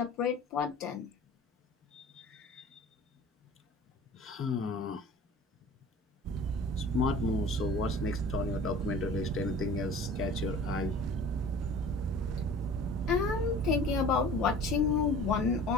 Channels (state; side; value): normal; both; correlation 0.43